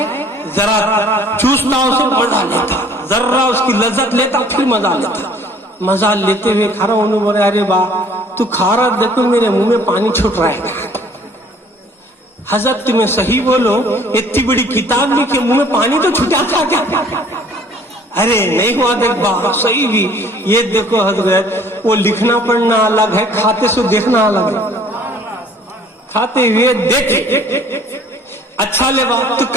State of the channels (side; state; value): both; normal; correlation 0.55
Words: ذرا چوستا اسے مزہ لیتا، ذرا اس کی لذت لیتا پھر مزہ لیتا. مزہ لیتے ہوئے کھا رہا. انہوں بولے ارے با تو کھا رہا دیکھو میرے منہ میں پانی چھوٹ رہا ہے. حضرت تمہیں صحیح بولو، اتنی بڑی کتاب لکھی منہ میں پانی تو چھوٹا تھا کیا؟ ارے نہیں ہوا دیکھ با صحیح بھی. یہ دیکھو حضرت وہ لکھنا پڑھنا الگ ہے، کھاتے سو دیکھنا الگ ہے. کھاتے ہوئے دیکھے. اچھا لے با تو